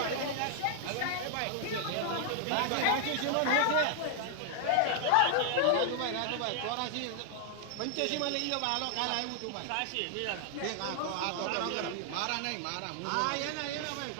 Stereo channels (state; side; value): different; both; correlation 0.00